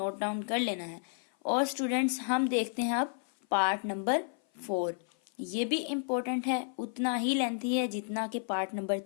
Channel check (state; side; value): silent; right; 55 dB below the other